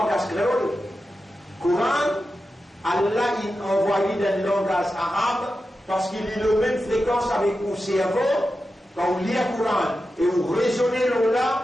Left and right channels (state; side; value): normal; both; correlation 0.91